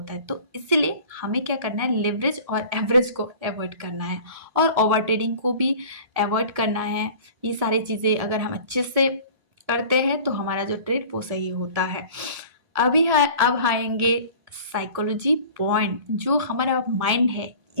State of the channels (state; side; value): late; left; 1.7 ms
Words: है। तो इसलिए हमें क्या करना है, लेवरेज और एवरेज को अवॉइड करना है और ओवर ट्रेडिंग को भी अवॉइड करना है। ये सारी चीजें अगर हम अच्छे से करते हैं तो हमारा जो ट्रेड वो सही होता है। अब आएंगे साइकोलॉजी पॉइंट, जो हमारा माइंड है